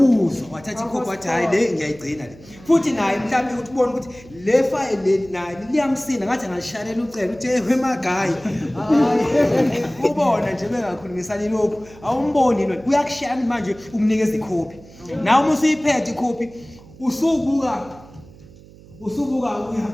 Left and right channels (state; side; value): noise; right; hum, 22 dB below the sound